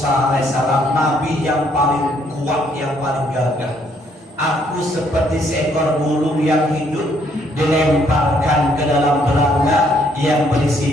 alaihissalam, nabi yang paling kuat, yang paling gagah. Aku seperti seekor burung yang hidup dilemparkan ke dalam belanga yang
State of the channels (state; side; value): normal; both; correlation 0.68